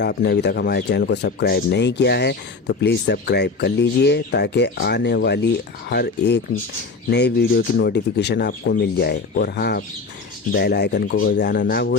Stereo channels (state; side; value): quieter; right; 4.2 dB